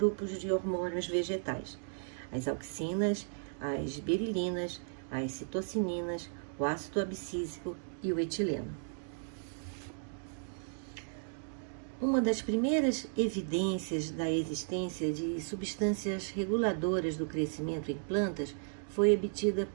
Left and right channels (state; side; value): silent; left; digital silence